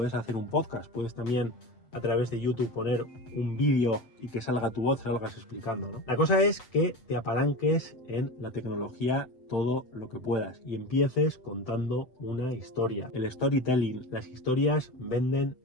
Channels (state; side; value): late; right; 8.0 ms